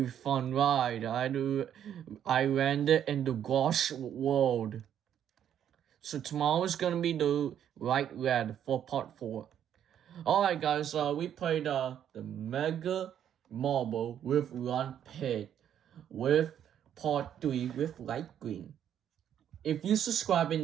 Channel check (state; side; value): quieter; left; 9.8 dB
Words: fun ride. I landed in the Gosh World. So tomorrow is gonna be the light red for part 4. Alright guys, we played the Mega Marble with Run Pit with part 3 with light green. If you subscribe in